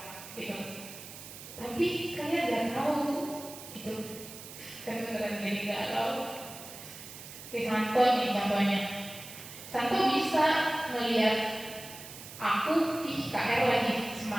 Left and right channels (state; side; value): noise; right; hiss, 14 dB below the sound